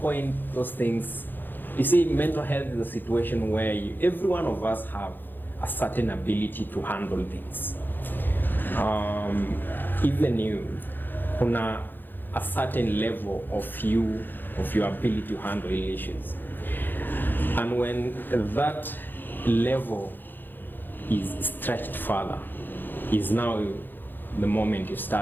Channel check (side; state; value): right; late; 0.092 ms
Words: those things, you see, mental health is a situation where every one of us have a certain ability to handle things. Even you, kuna a certain level of your ability to handle issues. And when that level is stretched further, is now the moment you